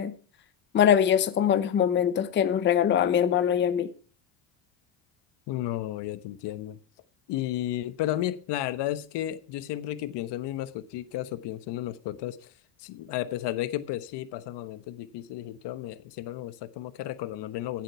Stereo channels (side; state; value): right; quieter; 9.7 dB